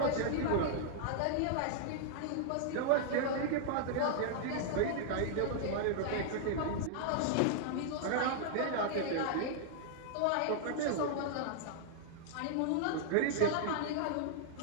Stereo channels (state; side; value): different; both; correlation -0.01